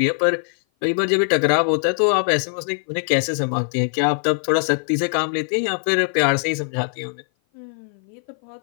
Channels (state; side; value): silent; right; 56 dB below the other